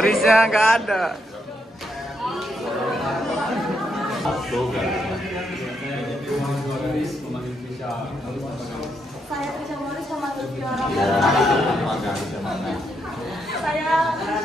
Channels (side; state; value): both; normal; correlation 0.78